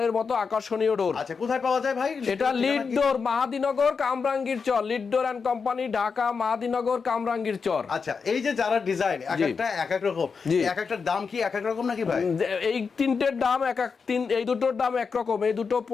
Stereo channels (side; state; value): right; quieter; 5.4 dB